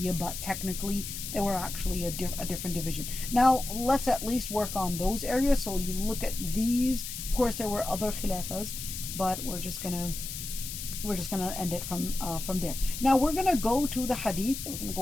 but technically they were actually a different division. Now let's at least work on those areas. So you look at these. Of course, there were other Khilafas, but we're just gonna end it from there. Now we're gonna go to the Hadith. We're gonna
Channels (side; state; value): left; noise; hiss, 7 dB below the sound